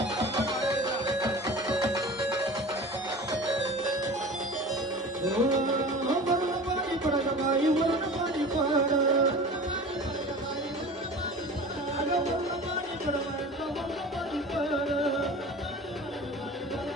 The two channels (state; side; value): normal; both; correlation 0.37